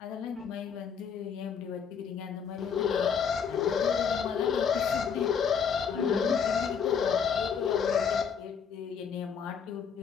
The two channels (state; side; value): quieter; right; 6.8 dB